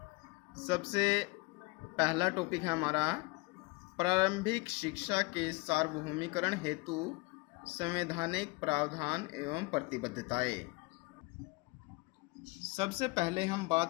सबसे पहला टॉपिक है हमारा प्रारंभिक शिक्षा के सार्वभौमिकरण हेतु संवैधानिक प्रावधान एवं प्रतिबद्धताएं। सबसे पहले हम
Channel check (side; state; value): right; quieter; 25.4 dB